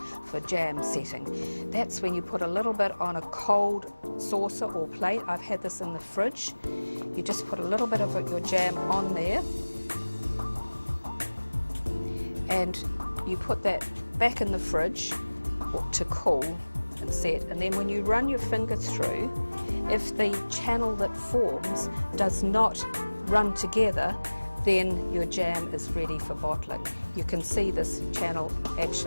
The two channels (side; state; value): both; inverted; correlation -1.00